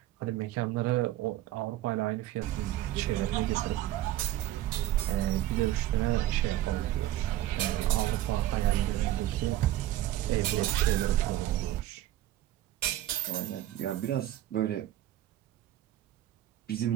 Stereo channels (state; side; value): quieter; left; 13.9 dB